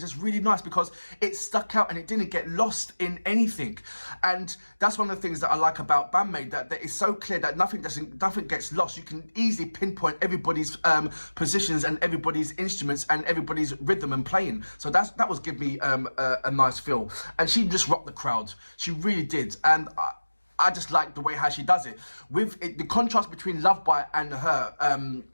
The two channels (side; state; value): both; inverted; correlation -1.00